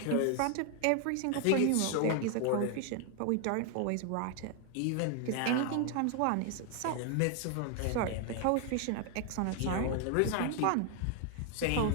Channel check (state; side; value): different; both; correlation 0.00